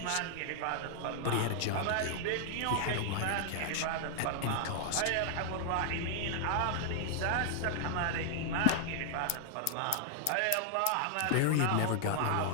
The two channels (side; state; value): both; different; correlation -0.01